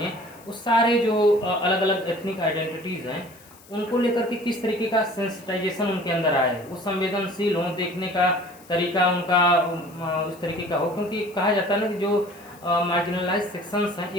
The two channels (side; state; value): left; noise; hiss, 24 dB below the sound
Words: उस सारे जो अलग अलग एथनिक आइडेंटिटीज़ हैं उनको लेकर के किस तरीके का सेंसिटाइजेशन उनके अंदर आए, वो संवेदनशील हों, देखने का तरीका उनका उस तरीके का हो। क्योंकि कहा जाता है ना कि जो मार्जिनलाइज सेक्शंस हैं,